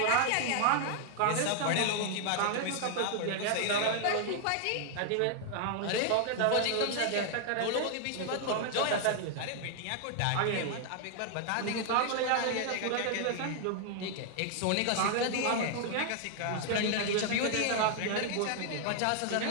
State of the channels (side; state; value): both; different; correlation 0.00